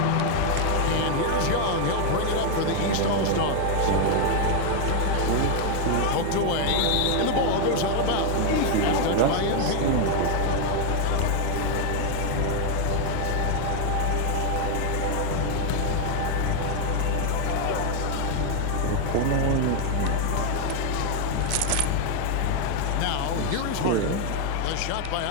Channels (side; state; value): both; different; correlation 0.01